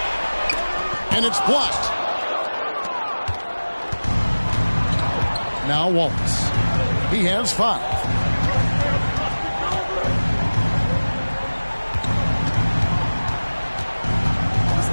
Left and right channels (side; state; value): both; inverted; correlation -1.00